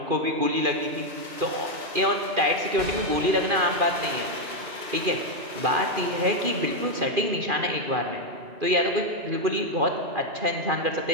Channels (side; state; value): left; late; 2.4 ms